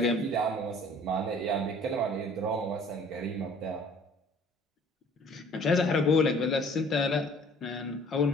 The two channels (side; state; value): both; normal; correlation 0.53